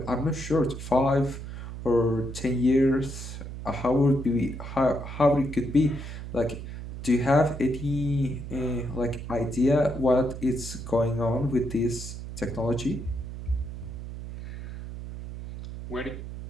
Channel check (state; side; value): noise; right; hum, 9 dB below the sound